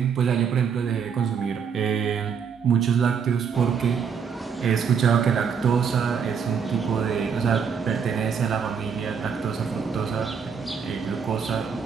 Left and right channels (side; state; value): left; quieter; 6.6 dB